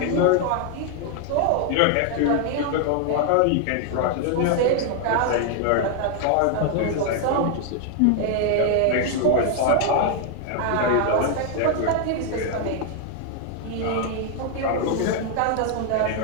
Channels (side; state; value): both; different; correlation 0.00